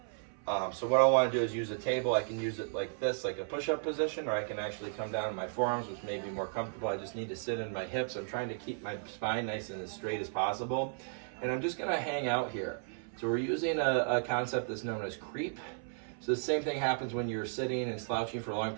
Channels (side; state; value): left; silent; 55 dB below the other